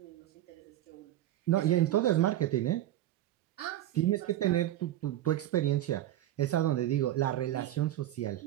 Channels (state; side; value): quieter; left; 13.3 dB